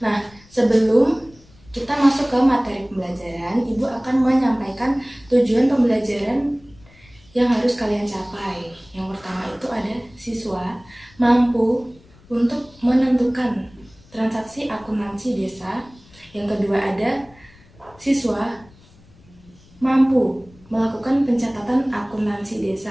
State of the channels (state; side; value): noise; left; rumble, 26 dB below the sound